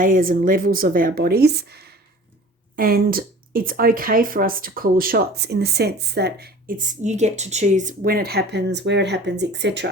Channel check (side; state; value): both; normal; correlation 0.44